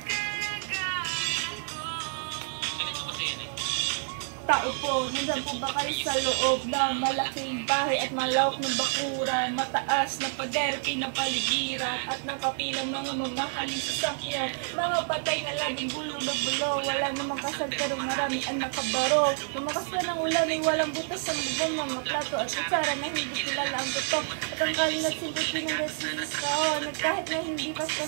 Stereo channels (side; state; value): left; silent; digital silence